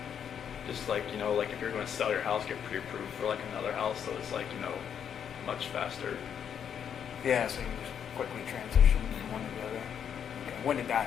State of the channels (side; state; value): right; quieter; 8.3 dB